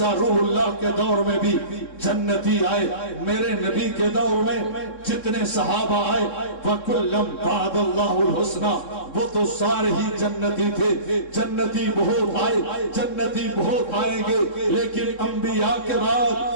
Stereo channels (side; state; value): right; late; 3.7 ms